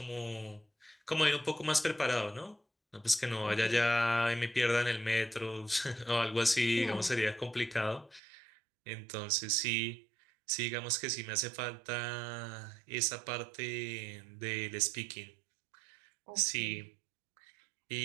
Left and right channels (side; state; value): left; drops out; at 8.2 s